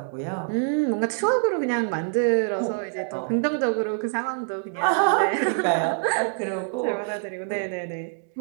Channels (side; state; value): left; silent; 61 dB below the other